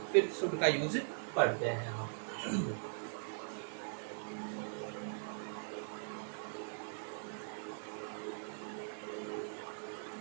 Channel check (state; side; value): silent; left; digital silence